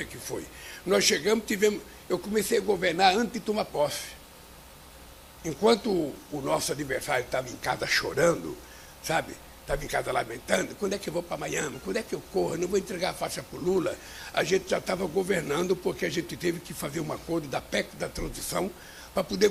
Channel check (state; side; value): identical; both; correlation 1.00